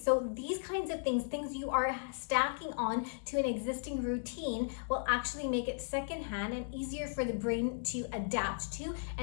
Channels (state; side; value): silent; right; 54 dB below the other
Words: these kinds of things you are stacking on to an existing routine will actually make it secondhand and easier for the brain to adapt to